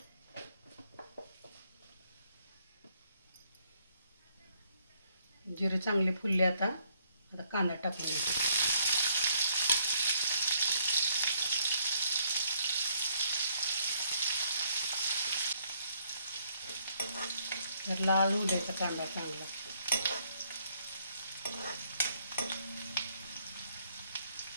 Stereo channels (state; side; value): inverted; both; correlation -0.69